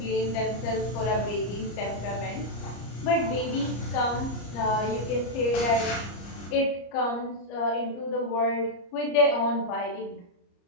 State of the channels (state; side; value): late; right; 34 ms